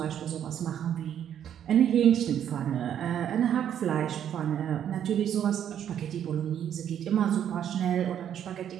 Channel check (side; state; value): left; quieter; 9.7 dB